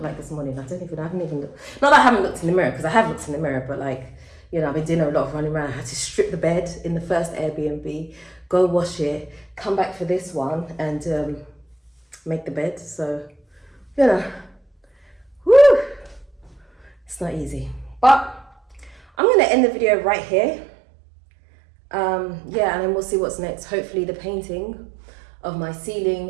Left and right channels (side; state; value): left; drops out; at 19.0 s